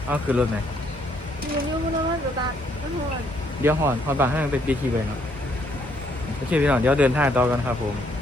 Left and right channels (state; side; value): normal; both; correlation 0.69